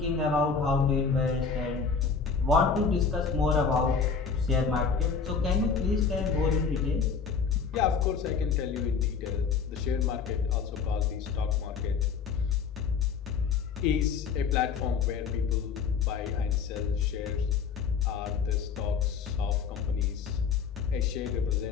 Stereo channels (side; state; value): right; quieter; 5.9 dB